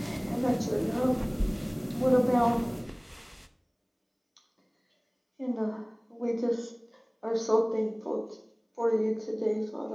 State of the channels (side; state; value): both; identical; correlation 1.00